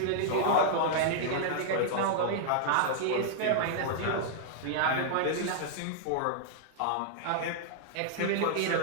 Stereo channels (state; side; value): different; both; correlation -0.01